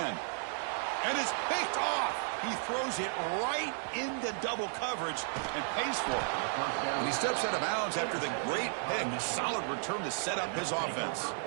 And it's picked off. He throws it right into double coverage and pays for it. And he steps out of bounds after the great pick. A solid return to set up his offense.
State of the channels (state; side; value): silent; left; 55 dB below the other